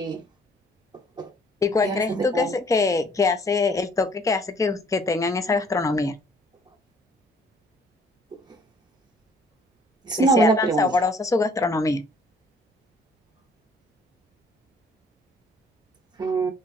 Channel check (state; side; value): normal; both; correlation 0.59